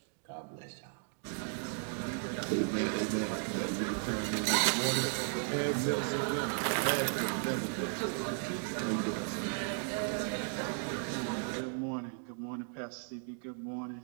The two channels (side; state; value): left; silent; 54 dB below the other